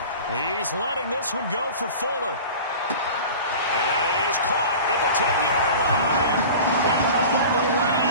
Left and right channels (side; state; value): both; inverted; correlation -0.37